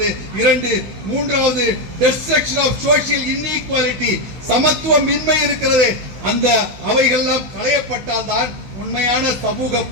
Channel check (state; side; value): late; left; 15 ms